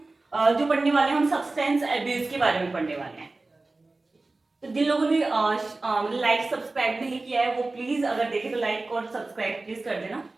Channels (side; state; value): left; quieter; 3.3 dB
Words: जो पढ़ने वाले हैं, हम सब्सटेंस एब्यूज के बारे में पढ़ने वाले हैं। तो जिन लोगों ने लाइक सब्सक्राइब नहीं किया है वो प्लीज, अगर देखे तो लाइक और सब्सक्राइब प्लीज कर देना।